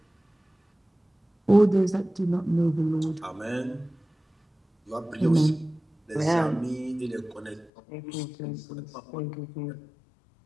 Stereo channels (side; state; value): right; drops out; at 7.7 s